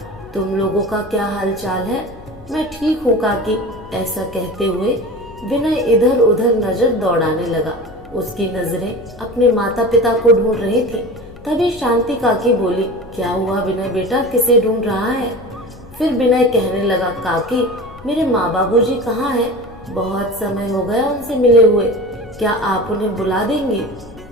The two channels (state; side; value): noise; left; rumble, 21 dB below the sound